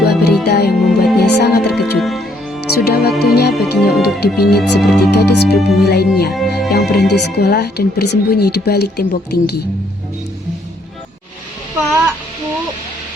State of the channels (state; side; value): normal; both; correlation 0.69